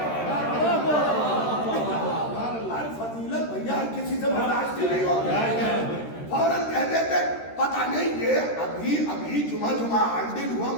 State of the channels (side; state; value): right; late; 13 ms